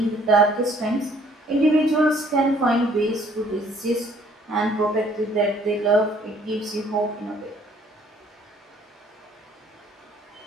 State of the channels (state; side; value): normal; both; correlation 0.60